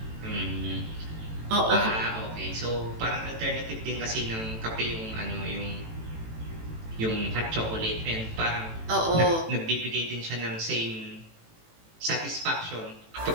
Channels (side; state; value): left; late; 18 ms